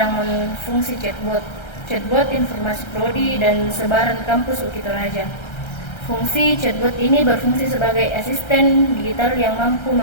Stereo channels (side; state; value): right; late; 1.3 ms